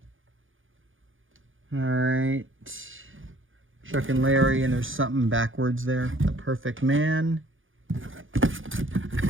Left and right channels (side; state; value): left; late; 0.58 ms